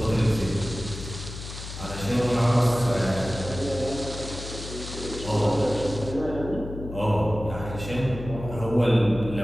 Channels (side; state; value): left; noise; hum, 10 dB below the sound